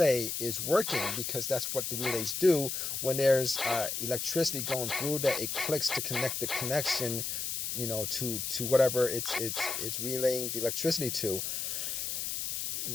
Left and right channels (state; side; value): noise; left; hiss, 2 dB below the sound